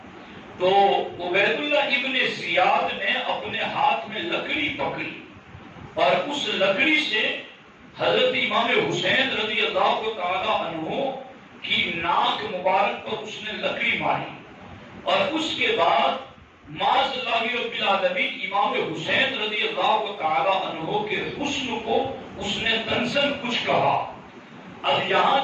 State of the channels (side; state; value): both; identical; correlation 1.00